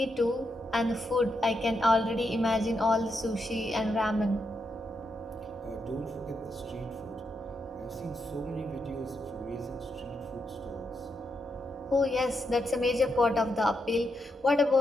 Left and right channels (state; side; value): normal; both; correlation 0.82